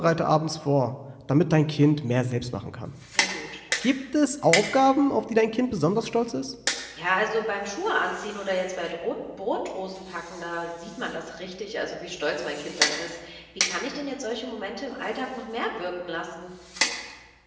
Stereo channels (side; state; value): both; identical; correlation 1.00